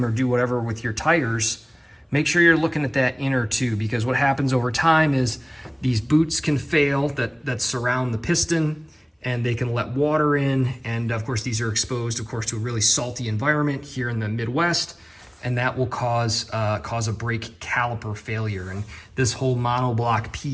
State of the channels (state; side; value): identical; both; correlation 1.00